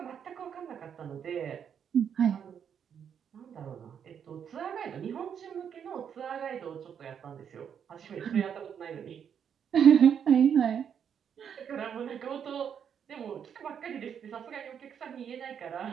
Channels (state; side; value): quieter; left; 8.0 dB